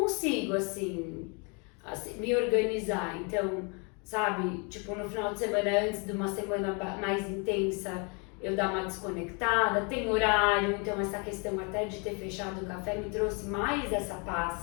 assim, me organizar. Então, sabe, tipo, no final de semana, antes de uma semana mais intensa, eu dar uma desconectada, tem horário, então essa questão até de ter fechado o café me trouxe mais essa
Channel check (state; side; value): quieter; right; 34.0 dB